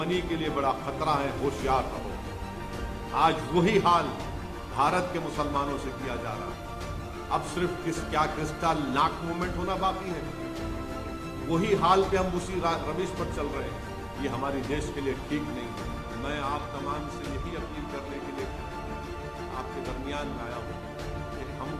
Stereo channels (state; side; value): identical; both; correlation 1.00